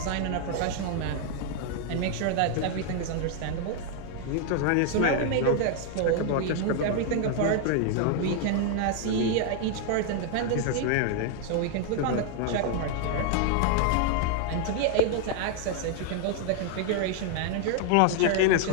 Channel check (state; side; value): different; both; correlation 0.00